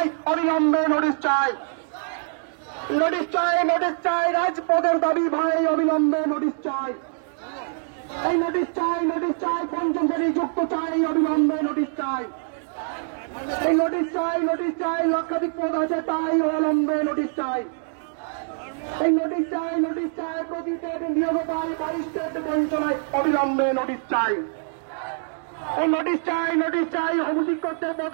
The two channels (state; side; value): silent; left; 62 dB below the other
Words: অবিলম্বে নোটিশ চাই, নোটিশ চাই, নোটিশ চাই, রাজপথের দাবি ভাই, অবিলম্বে নোটিশ চাই, এই নোটিশ চাই, নোটিশ চাই, পঞ্চম শ্রেণী যুক্ত চাই, অবিলম্বে নোটিশ চাই, এই নোটিশ চাই, নোটিশ চাই, লক্ষাধিক পদ আছে তাই, অবিলম্বে নোটিশ চাই, এই নোটিশ চাই, নোটিশ চাই, প্রতি স্টেট নিয়োগ পাই 22 স্টেট বঞ্চনায়, অবিলম্বে নোটিশ চাই, এই নোটিশ চাই, নোটিশ চাই, অভিযোগ করতে